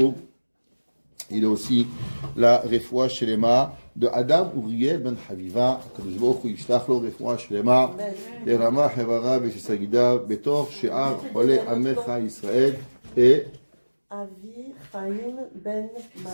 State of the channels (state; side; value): inverted; both; correlation -1.00